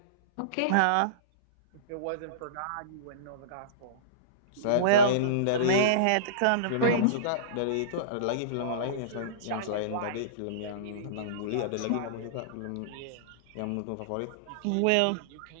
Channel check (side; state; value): both; different; correlation -0.04